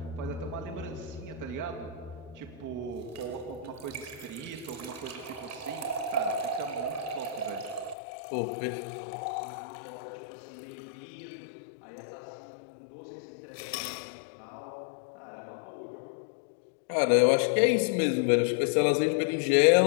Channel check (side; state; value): right; drops out; at 8.0 s